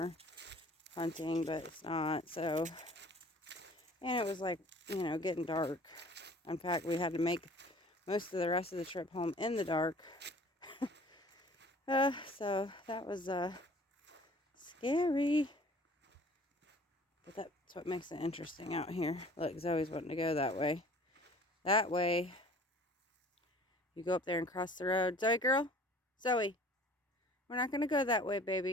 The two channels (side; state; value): both; normal; correlation 0.49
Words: hunting, but it's not. So, and it was like, getting dark. In fact, we had to make most of the rest of the trip home in the dark. So that was scary. But that's what makes it interesting out here. Look, Zoe's wanting to go that way. That way. You go up there and cross the road. Zoe, girl. Zoe. We're not going to go that way,